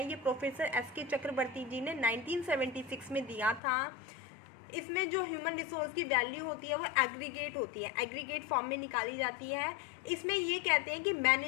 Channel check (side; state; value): right; drops out; at 3.6 s